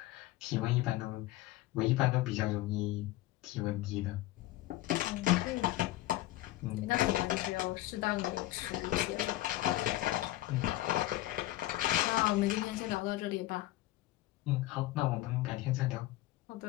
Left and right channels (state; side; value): quieter; right; 16.6 dB